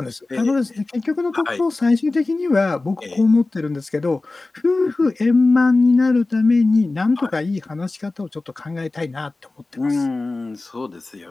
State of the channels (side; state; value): right; quieter; 3.3 dB